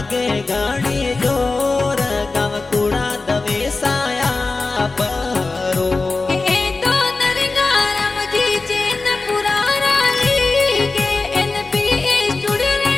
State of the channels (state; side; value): quieter; right; 3.7 dB